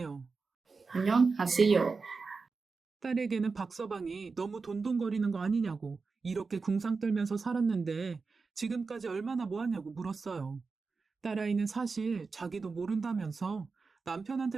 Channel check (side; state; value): left; quieter; 4.5 dB